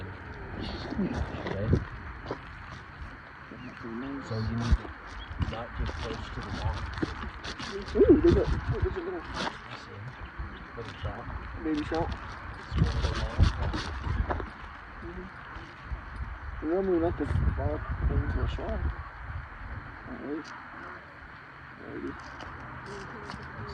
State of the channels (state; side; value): identical; both; correlation 1.00